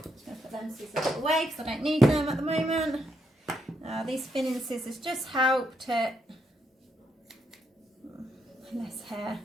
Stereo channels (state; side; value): normal; both; correlation 0.78